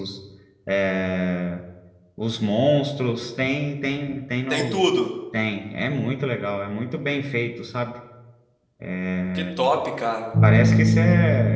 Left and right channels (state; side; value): identical; both; correlation 1.00